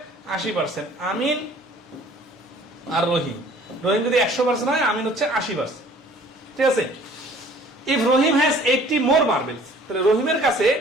80%। আমিন আর রহিম, রহিম যদি 100% হয়, আমিন হচ্ছে 80%। ঠিক আছে। If Rahim has 80 more marbles, তাহলে রহিমের কাছে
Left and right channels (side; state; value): both; normal; correlation 0.52